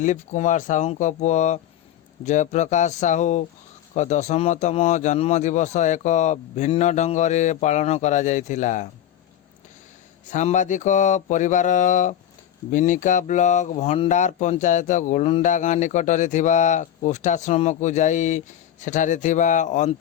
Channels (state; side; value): quieter; right; 10.9 dB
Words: କୁମାର ସାହୁଙ୍କ ପୁଅ ଜୟପ୍ରକାଶ ସାହୁଙ୍କ 10ତମ ଜନ୍ମଦିବସ ଏକ ଭିନ୍ନ ଢଙ୍ଗରେ ପାଳନ କରାଯାଇଥିଲା। ସାମ୍ବାଦିକ ପରିବାର ବିନିକା ବ୍ଲକ ଭଣ୍ଡାର ପଞ୍ଚାୟତ ଗୋଲୁଣ୍ଡା ଗାଁ ନିକଟରେ ଥିବା କୁଷ୍ଠାଶ୍ରମକୁ ଯାଇ ସେଠାରେ ଥିବା